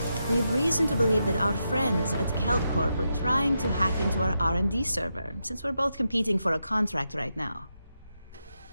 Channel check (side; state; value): both; inverted; correlation -0.86